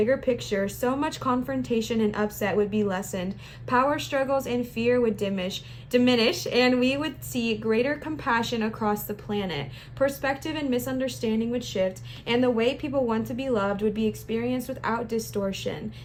picture, so much confrontation and upset would be lessened. Power struggles and fear would diminish, and we would see greater compassion across the planet. Perspective and misunderstanding would shift, and the way people want to be loved would be experienced without distortion.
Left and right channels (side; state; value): both; identical; correlation 1.00